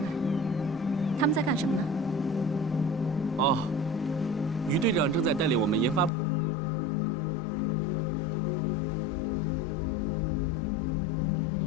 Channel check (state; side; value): drops out; right; at 6.1 s